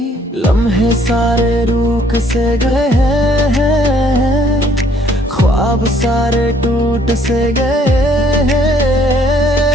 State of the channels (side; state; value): both; normal; correlation 0.63